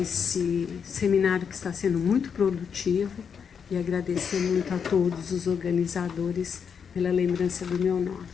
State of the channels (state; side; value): quieter; right; 6.8 dB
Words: seminário que está sendo muito produtivo e agradecer muito a todos os organizadores pela lembrança do meu nome.